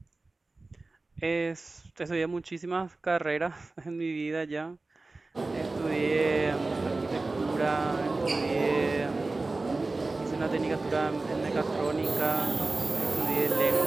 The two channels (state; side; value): quieter; left; 3.3 dB